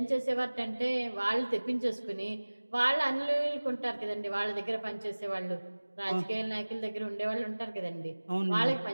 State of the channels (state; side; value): inverted; both; correlation -1.00